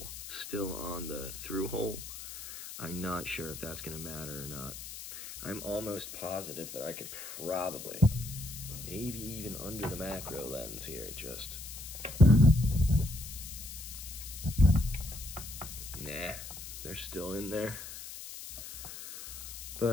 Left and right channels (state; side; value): noise; left; hiss, 10 dB below the sound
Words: still on the through hole. I'm not sure if that's gonna matter or not. I'm almost positive that I could probably, maybe even under the macro lens here, just nah, they're still in there.